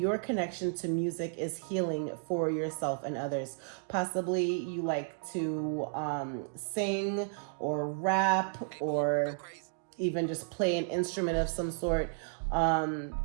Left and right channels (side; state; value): left; silent; digital silence